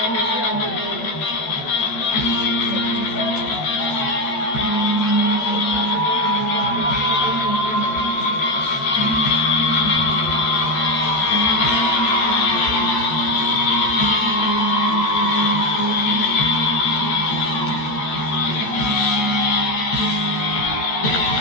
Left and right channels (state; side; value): late; right; 13 ms